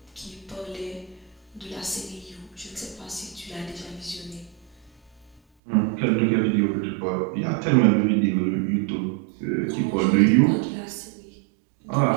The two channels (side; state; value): left; drops out; at 5.4 s